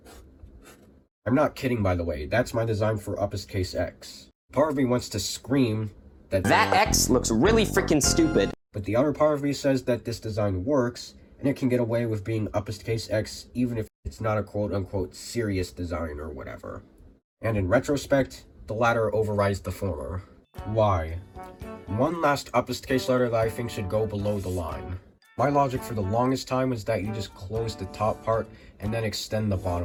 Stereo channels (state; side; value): identical; both; correlation 1.00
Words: I'm not kidding, by the way, that's my design for Uppest-Case X. Part of me wants to scream that X looks really freaking stupid. But the other part of me says that this design works, and it can get away with being Uppest-Case X even if it's not a quote-unquote serious design or whatever. And in retrospect, the latter overrides the former. Why? One last Uppest-Case letter that I think should go below the line. My logic for the longest time was that you just close the top part and then extend the